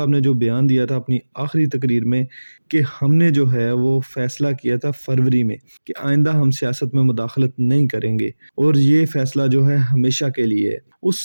ने जो बयान दिया था अपनी आखिरी तकरीर में कि हमने जो है वो फ़ैसला किया था फ़रवरी में कि आइंदा हम सियासत में मुदाखलत नहीं करेंगे और ये फ़ैसला जो है हमेशा के लिए है।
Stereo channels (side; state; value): both; inverted; correlation -1.00